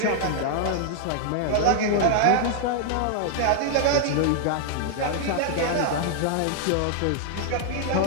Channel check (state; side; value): different; both; correlation 0.00